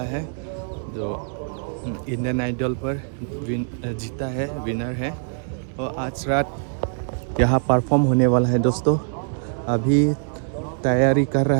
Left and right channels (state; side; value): silent; left; 63 dB below the other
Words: है, जो इंडियन आइडल पर जीता है, विनर है। और आज रात यहाँ परफॉर्म होने वाला है दोस्तों। अभी तैयारी कर रहा